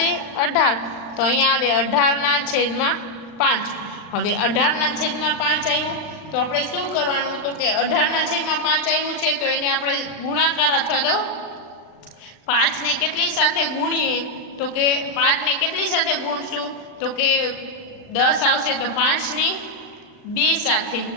18. તો અહીંયા આવે 18/5. હવે 18/5 આવ્યું તો આપણે શું કરવાનું? તો કે 18/5 આવ્યું છે તો એને આપણે ગુણાકાર અથવા તો 5 ને કેટલી સાથે ગુણીએ? તો કે 5 ને કેટલી સાથે ગુણશું? તો કે 10 આવશે તો 5 ને 2 સાથે.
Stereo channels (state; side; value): late; right; 39 ms